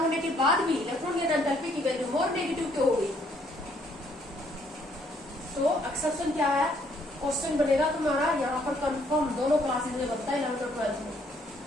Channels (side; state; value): both; normal; correlation 0.67